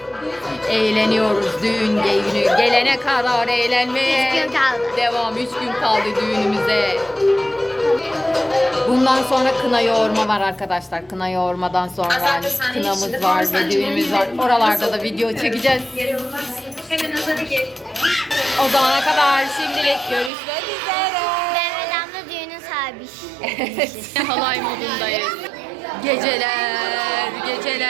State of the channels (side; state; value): left; drops out; at 20.3 s